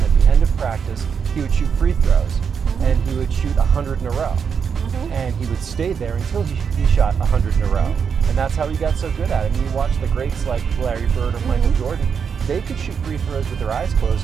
At the end of practice, he would shoot free throws, and he would shoot 100 in a row. And he would stay there until he shot 100 in a row. And that's how he got so good at it. I mean, you watch the greats like Larry Bird or Michael Jordan, they could shoot free throws with their eyes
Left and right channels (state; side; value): quieter; left; 6.6 dB